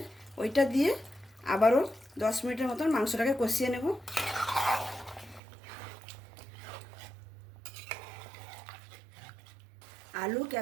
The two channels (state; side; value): drops out; left; at 5.4 s